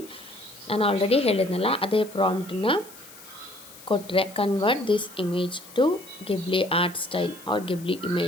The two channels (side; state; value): left; noise; hiss, 19 dB below the sound